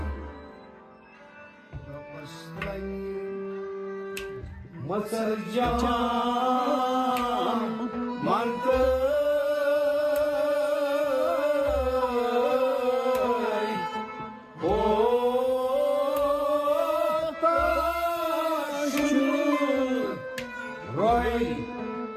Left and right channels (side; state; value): both; identical; correlation 1.00